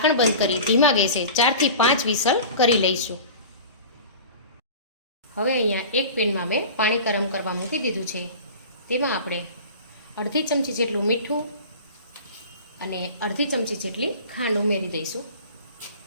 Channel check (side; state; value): both; inverted; correlation -0.38